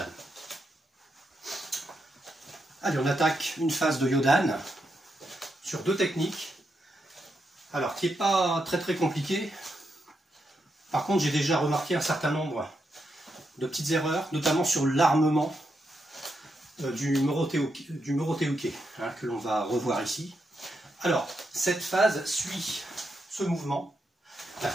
Allez, on attaque une phase de Yodan sur deux techniques. Alors, qui n'est pas très compliqué. Par contre, j'ai déjà remarqué un certain nombre de petites erreurs, notamment sur l'armement du Morote-uke, hein, que l'on va revoir ici. Alors, cette phase suit ce mouvement.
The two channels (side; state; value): both; normal; correlation 0.83